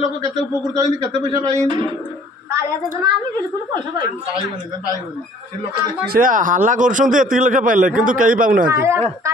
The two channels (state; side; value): normal; both; correlation 0.55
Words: लोक केते उपकृत होइनी केते पैसा पाइनी कालिया योजना आमी बिल्कुल पैसा पाइनी पाइबनी से लोक देखि से हल्ला करछन्ते एति लक्ष पाइले किंतु कई पाउ ना